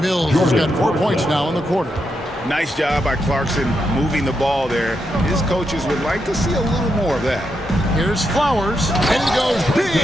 Mills has got 4 points now in the quarter. Nice job by Clarkson moving the ball there. His coaches would like to see a little more of that. Here's Flowers, and he goes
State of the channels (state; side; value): normal; both; correlation 0.83